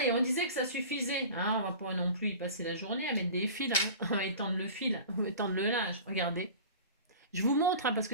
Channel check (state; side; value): inverted; both; correlation -0.38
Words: on disait que ça suffisait. Hein, on va pas non plus y passer la journée à mettre des fils. Hein. On va étendre le fil, on va étendre le linge. Regardez. Je vous montre hein, parce